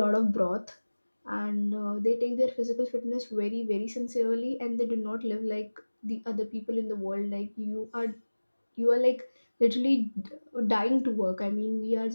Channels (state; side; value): inverted; both; correlation -1.00